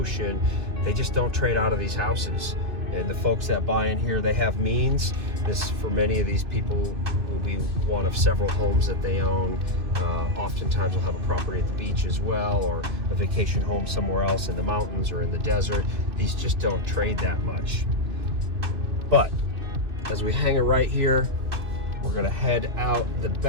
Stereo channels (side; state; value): left; late; 2.6 ms